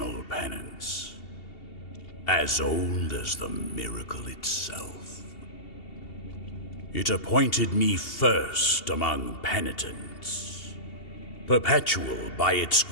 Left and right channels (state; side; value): late; right; 2.7 ms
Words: penance, as old as the miracle itself. It appointed me first among penitents, perpetual by its